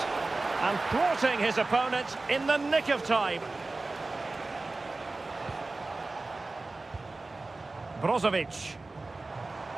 And thwarting his opponent in the nick of time. Brozovic.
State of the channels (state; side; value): quieter; left; 3.3 dB